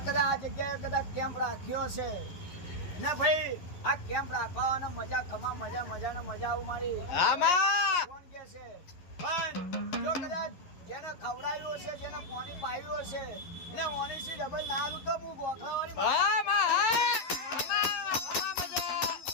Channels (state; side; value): late; right; 11 ms